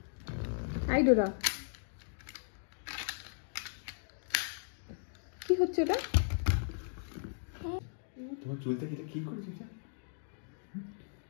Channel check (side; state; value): right; silent; digital silence